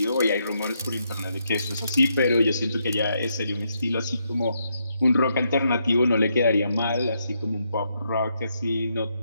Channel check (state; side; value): inverted; both; correlation -0.78